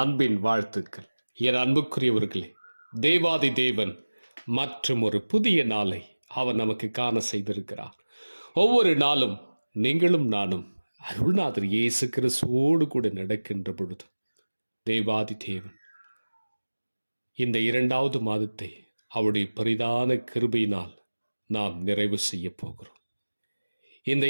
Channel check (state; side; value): inverted; both; correlation -1.00